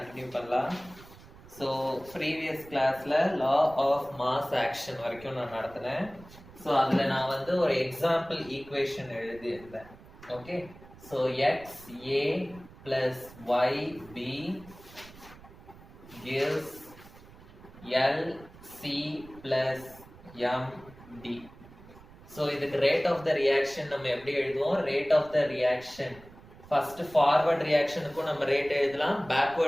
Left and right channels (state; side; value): noise; right; rumble, 21 dB below the sound